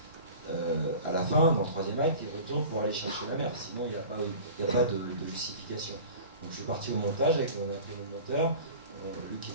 à la fin, dans le troisième acte, il retourne pour aller chercher la mer. Sinon, il n'y a pas de justification. Donc, je suis parti au montage avec mon monteur, lui qui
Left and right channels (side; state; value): both; inverted; correlation -0.39